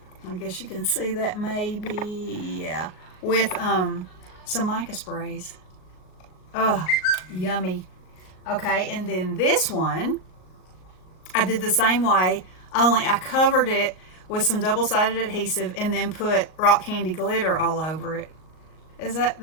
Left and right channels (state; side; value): late; right; 38 ms